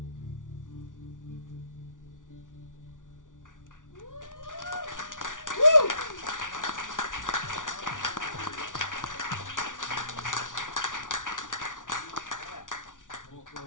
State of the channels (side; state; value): right; late; 0.88 ms